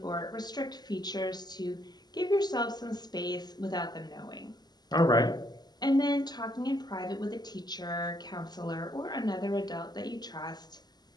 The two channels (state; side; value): late; right; 0.20 ms